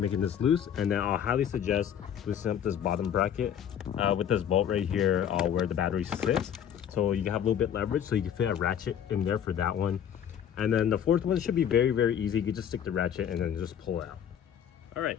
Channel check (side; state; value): right; quieter; 9.1 dB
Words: this loose. And then I'll highly suggest loosening up this bottom bracket with this bolt right here where the battery sits, so you can have a little bit leverage, so you can fit a ratchet in there for that one. And then the fourth one should be very easy. You can just stick the ratchet and then just pull it out. All right,